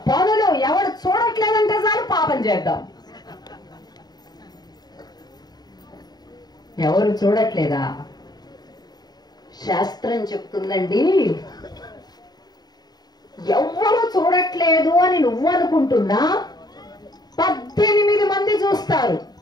పనులు, ఎవరు చూడట్లేదంటే చాలు పాపం చేద్దాం. ఎవరు చూడట్లేదా? శాస్త్రం చెప్తుందండి, ఎవ్వరు చూడట్లేదు అని నువ్వు అనుకుంటున్నా 18 మంది చూస్తారు.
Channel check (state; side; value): late; right; 0.20 ms